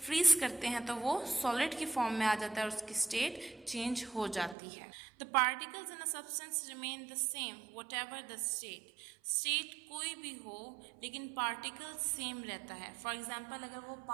फ्रीज करते हैं तो वो सॉलिड की फॉर्म में आ जाता है और उसकी स्टेट चेंज हो जाती है. The particles in a substance remain the same what ever the state. State कोई भी हो लेकिन पार्टिकल सेम रहता है. फॉर एग्जाम्पल अगर वो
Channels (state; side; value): drops out; left; at 4.5 s